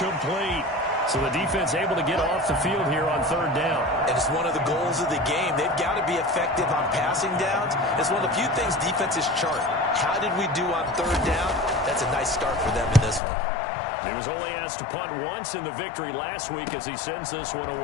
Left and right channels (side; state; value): right; drops out; at 13.2 s